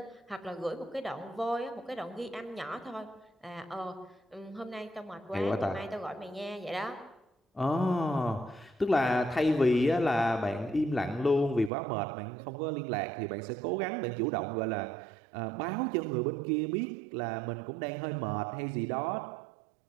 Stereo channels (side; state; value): left; drops out; at 11.7 s